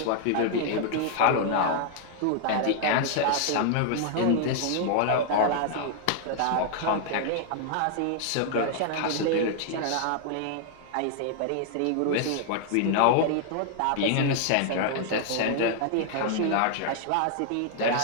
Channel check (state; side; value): different; both; correlation 0.00